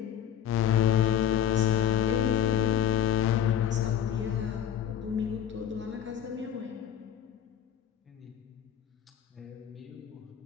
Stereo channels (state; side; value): quieter; right; 9.7 dB